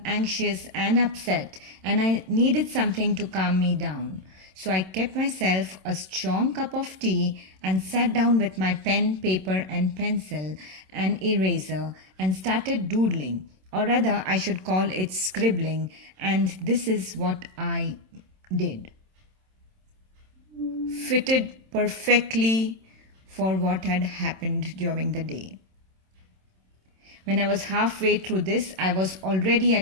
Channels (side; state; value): left; late; 27 ms